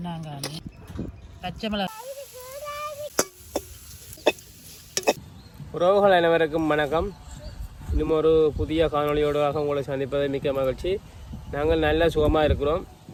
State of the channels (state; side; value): identical; both; correlation 1.00